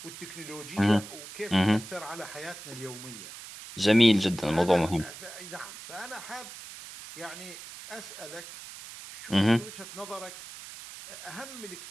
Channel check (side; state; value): right; noise; hiss, 13 dB below the sound